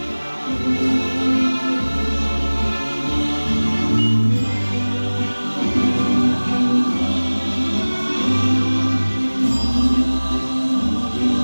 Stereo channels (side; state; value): both; inverted; correlation -1.00